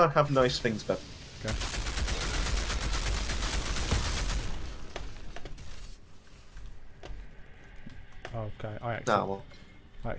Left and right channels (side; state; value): both; identical; correlation 1.00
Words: have nice things, Ben. Okay. Okay, Well. I